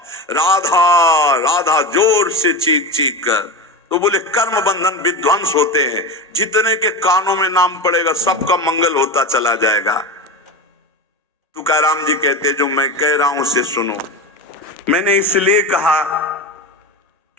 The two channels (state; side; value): normal; both; correlation 0.23